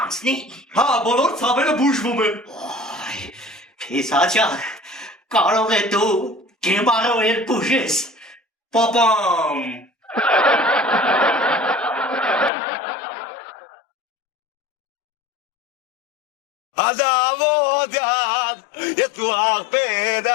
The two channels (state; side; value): drops out; right; at 12.5 s